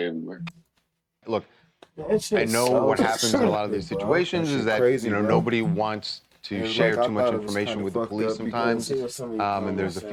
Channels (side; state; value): both; identical; correlation 1.00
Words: Look, I know what happens in a lot of these situations is that crazy, bro. nobody wants to And share I too much thought it was information kinda with the fucked police up sometimes, because and there's a